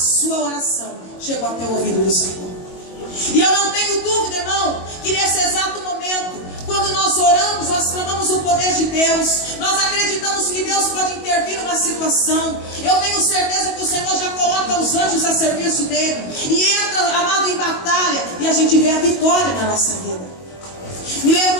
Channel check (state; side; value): late; right; 22 ms